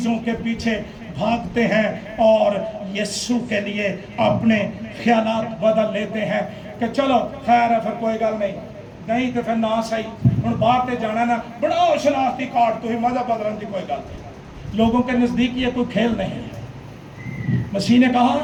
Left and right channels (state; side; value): identical; both; correlation 1.00